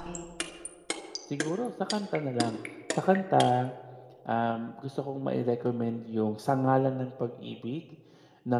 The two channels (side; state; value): both; identical; correlation 1.00